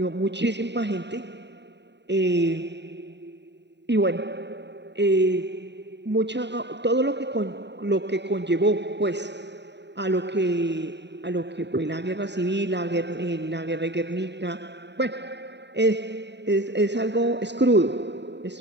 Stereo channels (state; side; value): late; left; 0.51 ms